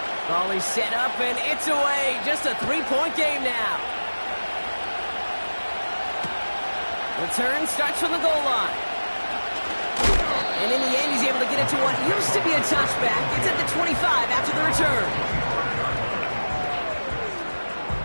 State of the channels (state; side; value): inverted; both; correlation -1.00